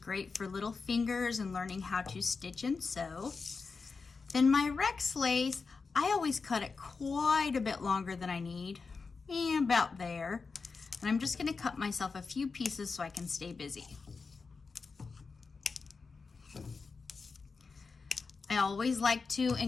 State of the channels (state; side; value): quieter; right; 4.6 dB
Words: for little fingers and learning how to stitch and sew. Then my Rex lace, I always cut it quite a bit longer than I need, about there. And I'm just going to cut myself a few pieces so I can stay busy. I always like to